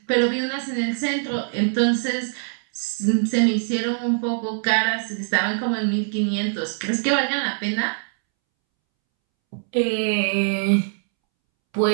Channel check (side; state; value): left; silent; 64 dB below the other